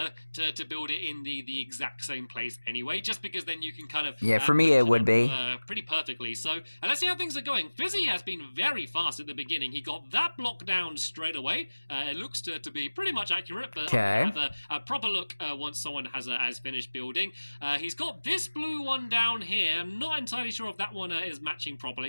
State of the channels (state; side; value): inverted; both; correlation -1.00